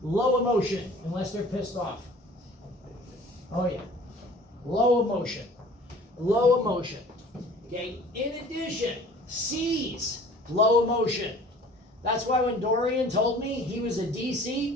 Low emotion, unless they're pissed off. Oh yeah. Low emotion. Low emotion. Okay, in addition, C's, low emotion. That's why when Dorian told me he was a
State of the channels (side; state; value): both; normal; correlation 0.48